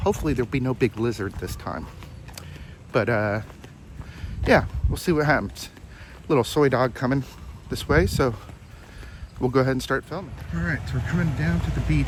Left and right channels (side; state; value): both; identical; correlation 1.00